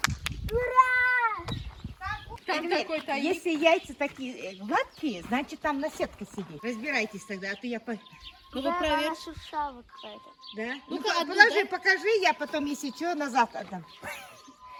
Там такой тайник. Если яйца такие гладкие, значит там наседка сидит. Разбирайтесь тогда, а то я... Ну вы проверьте. шуршава какая-то. Да? Ну-ка, Ну, одну положи, дай. покажи, я потом, если что, назад отдам.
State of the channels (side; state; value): both; identical; correlation 1.00